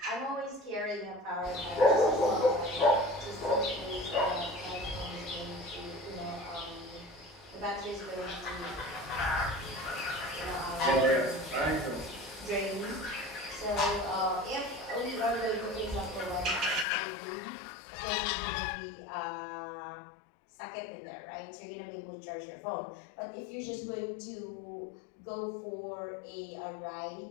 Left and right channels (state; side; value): drops out; right; at 16.9 s